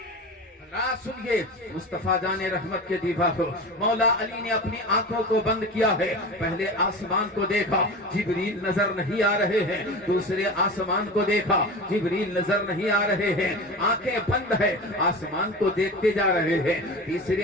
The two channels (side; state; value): both; normal; correlation 0.30